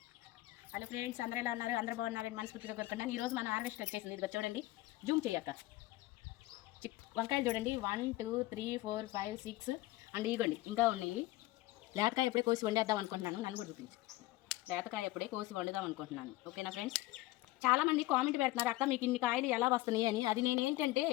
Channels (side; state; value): right; quieter; 18.1 dB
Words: హలో ఫ్రెండ్స్, అందరూ ఎలా ఉన్నారు? అందరూ బాగున్నారని మనస్ఫూర్తిగా కోరుకున్నాను. ఈరోజు మన హార్వెస్ట్ వచ్చేసింది. ఇది చూడండి, జూమ్ చేయక్క. వంకాయలు చూడండి, 1 2 3 4 5 6 అండ్ ఇగోండి ఇంకా ఉన్నాయి. లేతకాయ ఎప్పుడే కోసి వండేద్దాం అనుకుంటున్నాను. నన్ను కూడా చూపించు. లేతకాయ ఎప్పుడే కోసి వండుదాం అనుకుంటున్నాను. ఓకేనా ఫ్రెండ్స్? చాలామంది కామెంట్ పెడుతున్నారు, అక్క మీకు ఇన్ని కాయలు ఎలా వస్తున్నాయి అని. అది నేను ఏంటంటే